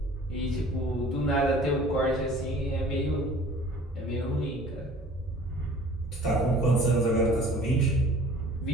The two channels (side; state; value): both; normal; correlation 0.48